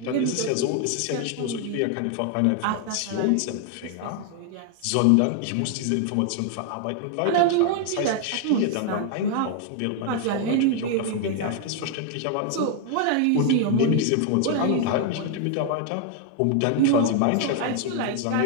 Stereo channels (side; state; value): both; different; correlation 0.00